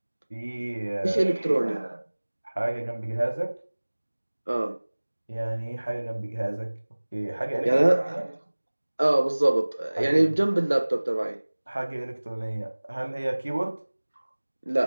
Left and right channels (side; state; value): both; inverted; correlation -1.00